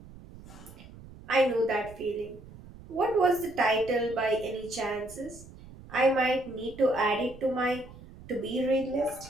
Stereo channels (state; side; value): noise; right; rumble, 18 dB below the sound